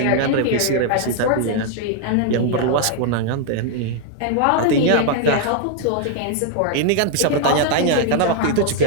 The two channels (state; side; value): different; both; correlation 0.00